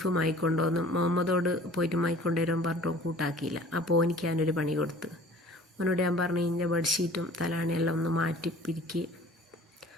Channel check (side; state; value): both; normal; correlation 0.48